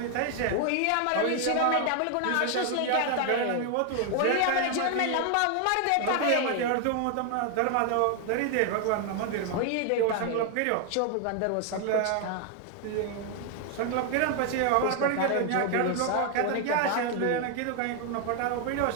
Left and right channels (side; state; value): both; different; correlation 0.00